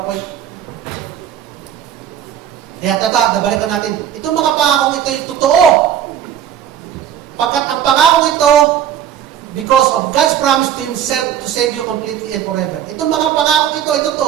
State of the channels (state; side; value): quieter; left; 9.9 dB